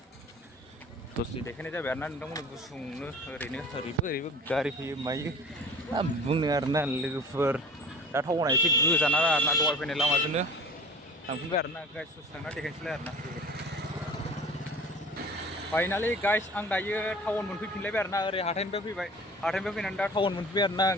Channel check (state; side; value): normal; both; correlation 0.42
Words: दसे देखायनाय जाबाय आरोना नोंथांमोननो गुसुंनो ओरैबो गारि फैयो मायो बुंनो आरोना लोगोफोर दा टाउना एसे गोजान आरोना दहाय फैनाय लामाजोंनो थांफिनबाय आरोना गाइस दसे थांना देखायनोसैलाय आरोना फाइनालि गाइस आं दायो टाउन मोनफैफिनलायबाय आरोना ओरै हाथायनिफ्राय फैनानै दा टाउन मोनफैबाय आरोना